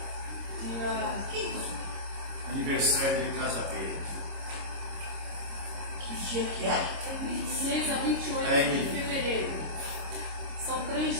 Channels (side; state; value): left; late; 26 ms